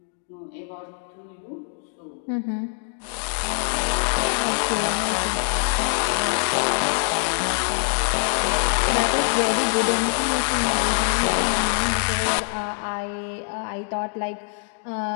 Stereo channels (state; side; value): silent; right; 55 dB below the other